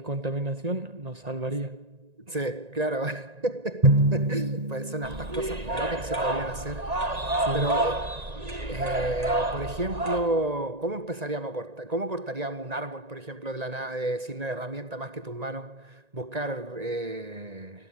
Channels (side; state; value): left; late; 1.9 ms